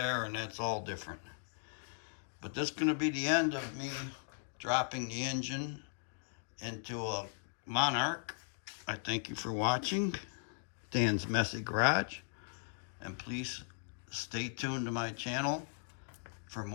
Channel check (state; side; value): silent; right; digital silence